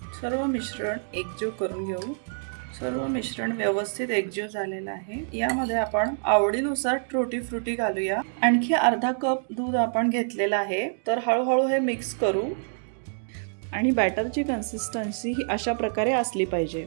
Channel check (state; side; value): silent; left; digital silence